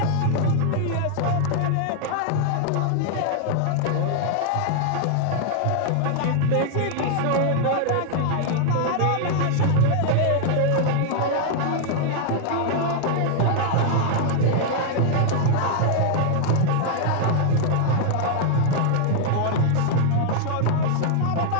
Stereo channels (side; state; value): both; different; correlation 0.00